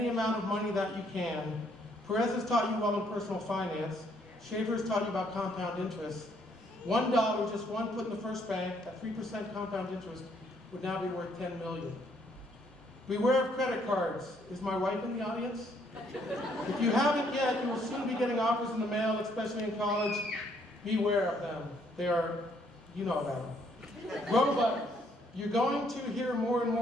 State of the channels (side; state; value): both; normal; correlation 0.68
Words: amount of money that you can. Perez has taught you well in personal finance. Schaefer has taught you about compound interest. $1, just one put in the first bank at 3% compound interest, would now be worth $10 million. Beware of credit cards. Is my wife in the audience? If you haven't yet, you will soon be getting offers in the mail, especially in college. Beware of them. They are, you know about them. Robots. You're going to hear more and